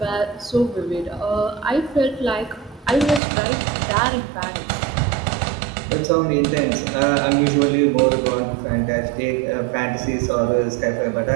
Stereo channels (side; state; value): left; drops out; at 3.2 s